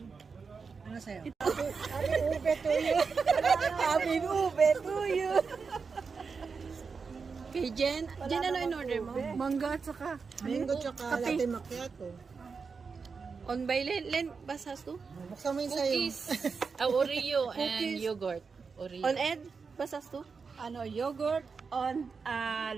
Ano sa'yo? Aming ube tuyo. Kay Jen, ano in order mo? Mangga at saka. Mango tsaka latte macchiato. On by Len, basas to? Buksan mo yung sa'yo. Oreo and yogurt. Oreo. On Ed, basas to? Ano, yogurt on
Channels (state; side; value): quieter; left; 5.2 dB